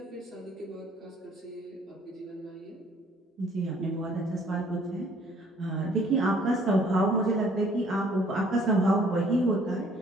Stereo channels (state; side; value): normal; both; correlation 0.59